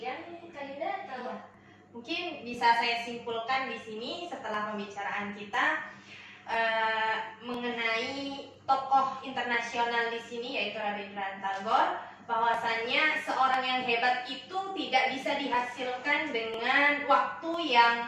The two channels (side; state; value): both; identical; correlation 1.00